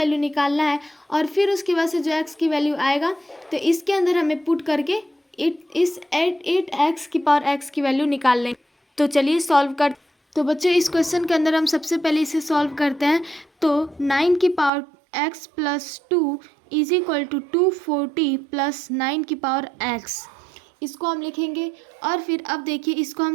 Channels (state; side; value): drops out; left; at 14.7 s